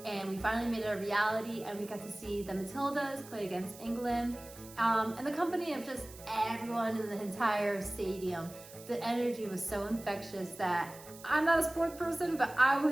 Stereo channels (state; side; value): noise; right; hiss, 18 dB below the sound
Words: and we finally made it a reality, and we got to see the Matildas play against England. And the company of just everyone in the entire stadium. The energy was so infectious that I'm not a sports person, but I